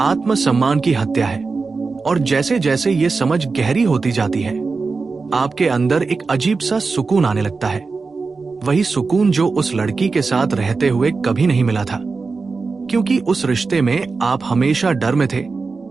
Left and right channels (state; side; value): quieter; left; 4.3 dB